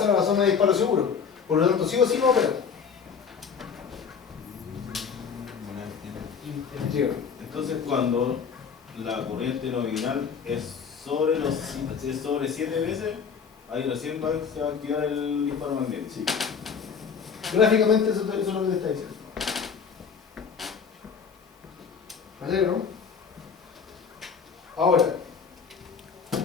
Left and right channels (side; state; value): right; quieter; 6.3 dB